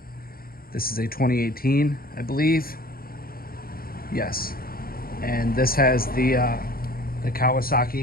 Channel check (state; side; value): late; right; 0.43 ms